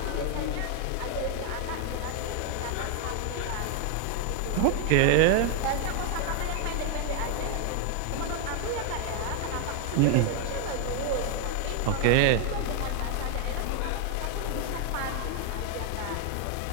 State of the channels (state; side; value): different; both; correlation 0.00